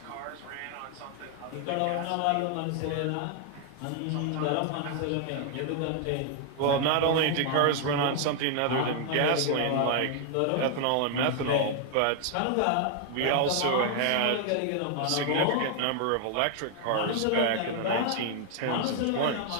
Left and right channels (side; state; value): both; different; correlation 0.00